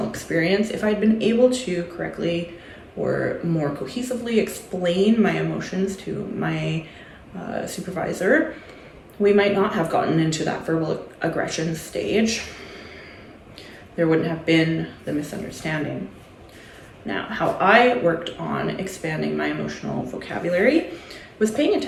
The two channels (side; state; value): both; identical; correlation 1.00